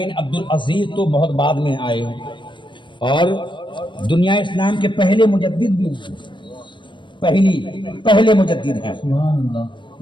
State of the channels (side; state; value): right; late; 0.23 ms